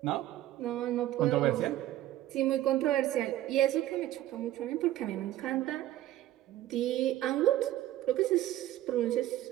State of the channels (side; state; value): left; quieter; 14.0 dB